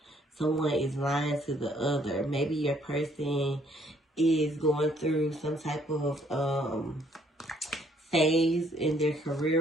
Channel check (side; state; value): both; normal; correlation 0.65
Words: someone is lying to the other. Maybe your person is going through some type of phase in their career